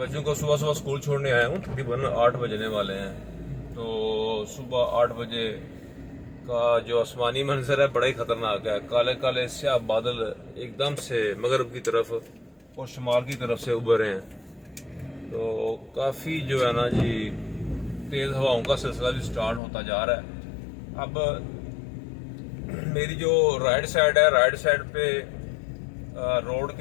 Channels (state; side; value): drops out; right; at 19.6 s